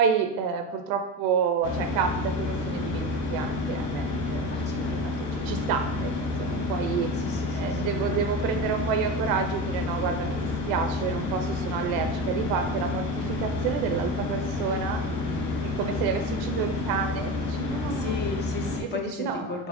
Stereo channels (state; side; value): normal; both; correlation 0.24